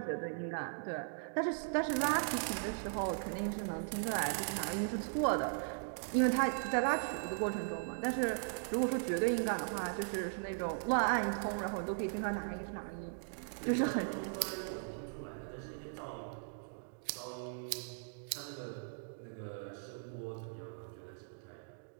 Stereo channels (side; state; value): left; silent; digital silence